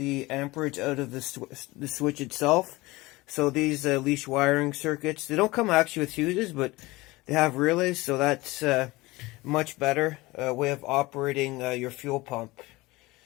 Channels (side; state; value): right; quieter; 21.1 dB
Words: amperage out of the switch itself. So these leash wiring circuits, they don't come actually with fuses, but they have relays, so that's much better way of operating your fuel pump.